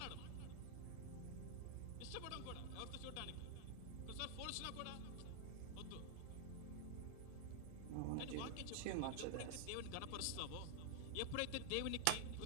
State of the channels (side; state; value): both; different; correlation 0.00